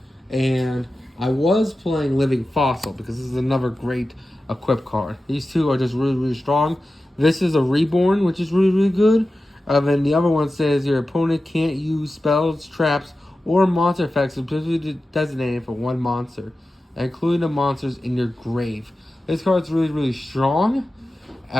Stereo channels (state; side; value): normal; both; correlation 0.94